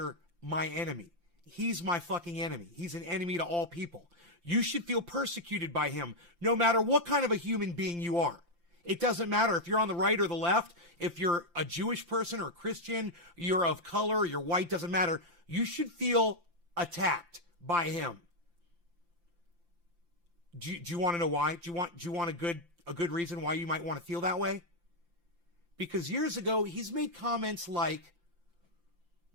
my enemy. He's my fucking enemy. He's an enemy to all people. You should feel persecuted by him, no matter what kind of a human being you are. It doesn't matter if you're on the right or the left, if you're a Jewish person or a Christian, you're of color, you're white, doesn't matter. You should feel attacked by him. Do you want to know why? Do you want a good reason why you might want to feel that way? Because years ago, he's made comments like,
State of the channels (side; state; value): left; late; 5.8 ms